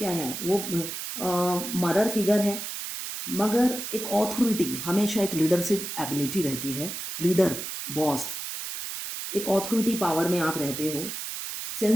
है, वो मदर फिगर है, मगर एक ऑथोरिटी, हमेशा एक लीडरशिप एबिलिटी रहती है, लीडर, बॉस, एक ऑथोरिटी पावर में आप रहते हो।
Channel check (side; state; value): right; noise; hiss, 6 dB below the sound